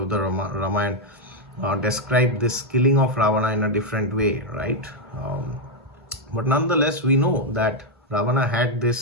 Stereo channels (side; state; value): both; normal; correlation 0.02